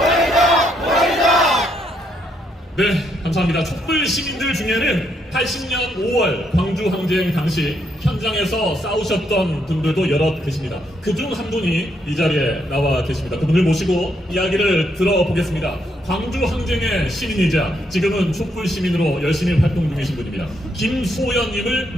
네, 감사합니다. 촛불 시민들 중에는 80년 5월 광주 항쟁 당시 현장에서 싸우셨던 분들도 여럿 계십니다. 그중 한 분이 이 자리에 나와 계십니다. 그분을 모시고 이야기를 들어보겠습니다. 광주 항쟁의 시민이자 지금은 촛불 시민으로 열심히 활동 중이신 분입니다. 김소연님을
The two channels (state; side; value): normal; both; correlation 0.75